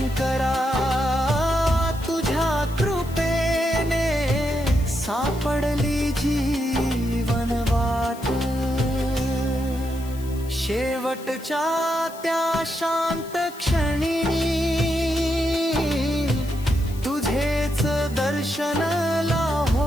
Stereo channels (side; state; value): left; noise; hiss, 19 dB below the sound